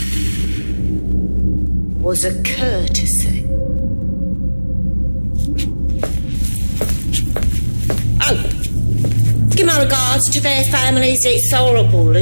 was a courtesy. regards to their families, it's horrible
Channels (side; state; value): both; inverted; correlation -1.00